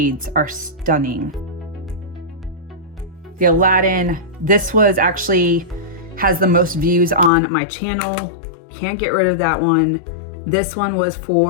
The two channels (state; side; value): drops out; right; at 7.3 s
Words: are stunning. The Aladdin. This was actually, has the most views on my channel. Can't get rid of that one. This one was